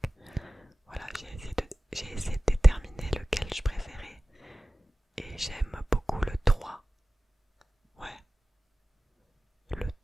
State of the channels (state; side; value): normal; both; correlation 0.97